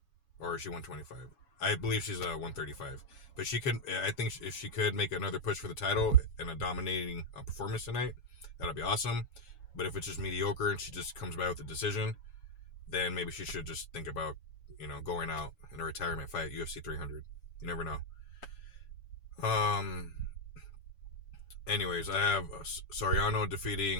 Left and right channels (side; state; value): right; late; 7.2 ms